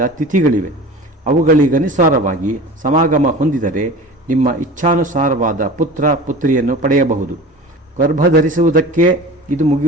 ತಿಥಿಗಳಿವೆ. ಅವುಗಳಿಗನುಸಾರವಾಗಿ ಸಮಾಗಮ ಹೊಂದಿದರೆ ನಿಮ್ಮ ಇಚ್ಛಾನುಸಾರವಾದ ಪುತ್ರ ಪುತ್ರಿಯನ್ನು ಪಡೆಯಬಹುದು. ಗರ್ಭಧರಿಸುವುದಕ್ಕೆ ಇದು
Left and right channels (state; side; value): normal; both; correlation 0.37